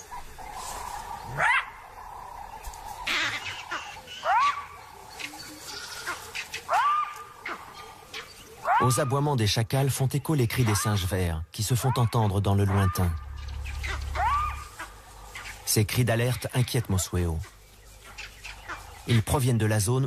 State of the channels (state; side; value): identical; both; correlation 1.00